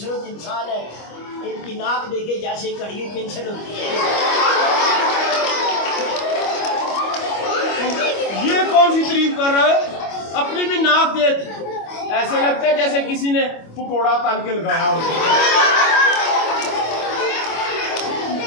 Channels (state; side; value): late; right; 25 ms